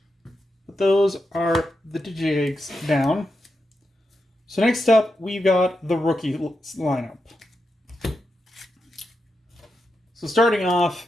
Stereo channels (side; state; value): both; normal; correlation 0.87